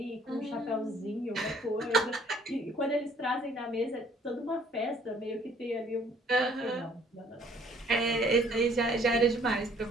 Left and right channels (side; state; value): both; normal; correlation 0.59